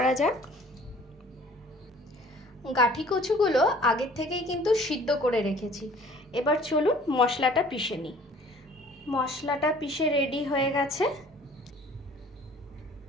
जाक। गाठी कचुगुलो आगे थेकेई किन्तु सिद्ध करे रेखेछि। एबार चलुन मशलाटा पिषे निই। मशलाटा पिषे रेडी हये गेছে।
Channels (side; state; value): both; normal; correlation 0.52